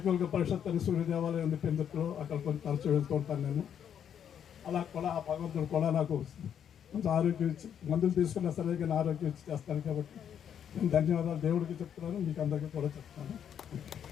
పరిషత్ అని సూర్య దేవాలయం ఉంది పెందుట్లో, అక్కడ కొంచెం తరచు వెళ్తూ ఉంటాను నేను. అలా కూడా ఆ భగవంతుడు కూడా నాకు కొంచెం ఆరోగ్యం ఇచ్చి, మందులు తీసుకున్నా సరే కానీ ఆరోగ్యం ఇచ్చి చేస్తాను. కాబట్టి నేను ధన్యవాదాలు దేవుడికి చెప్తున్నాను, మీకు అందరికీ కూడా చెప్తాను.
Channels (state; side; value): quieter; right; 8.8 dB